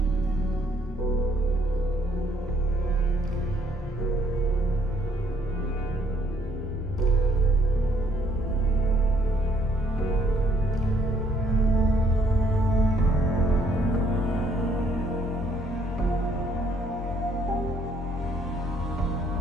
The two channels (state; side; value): normal; both; correlation 0.66